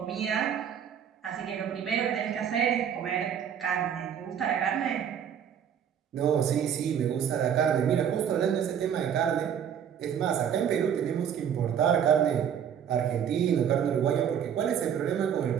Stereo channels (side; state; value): left; quieter; 8.6 dB